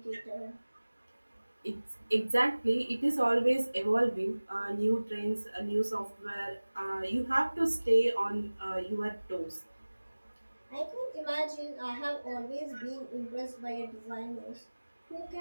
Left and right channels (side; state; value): both; inverted; correlation -1.00